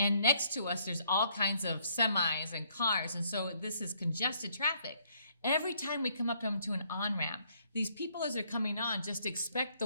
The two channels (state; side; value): inverted; both; correlation -0.68